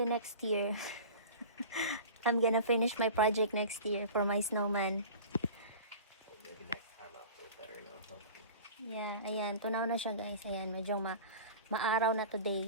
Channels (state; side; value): inverted; both; correlation -0.37